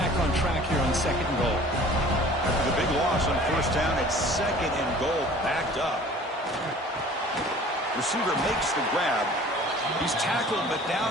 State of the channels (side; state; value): both; normal; correlation 0.47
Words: on track here on 2nd and goal. After the big loss on 1st down, it's 2nd and goal, backed up. Receiver makes the grab. He's tackled, but